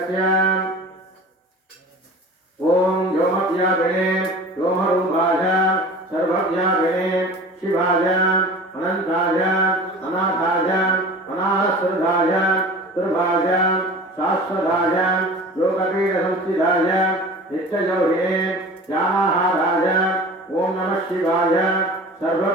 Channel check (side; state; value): both; normal; correlation 0.39